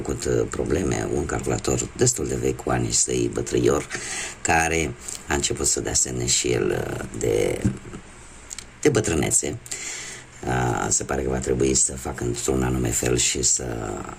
probleme. Un calculator destul de vechi, cu ani săi bătrâior, care a început să dea semne și el de bătrânețe. Se pare că va trebui să fac într-un anume fel și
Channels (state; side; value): identical; both; correlation 1.00